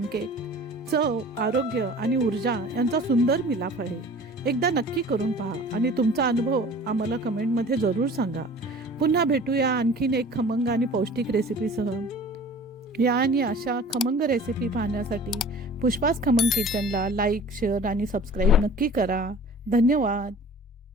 चव, आरोग्य आणि ऊर्जा यांचा सुंदर मिलाफ आहे. एकदा नक्की करून पहा आणि तुमचा अनुभव आम्हाला कमेंटमध्ये जरूर सांगा. पुन्हा भेटूया आणखीन एक खमंग आणि पौष्टिक रेसिपीसह. या आणि अशा खमंग रेसिपी पाहण्यासाठी पुष्पास खमंग किचनला लाईक, शेअर आणि सबस्क्राईब नक्की करा. धन्यवाद.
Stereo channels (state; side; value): normal; both; correlation 0.44